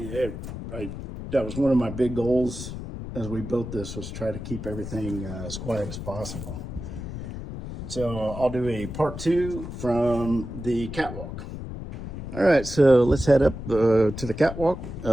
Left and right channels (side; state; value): left; noise; rumble, 8 dB below the sound